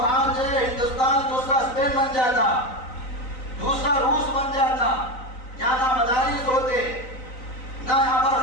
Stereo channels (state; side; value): late; right; 3.9 ms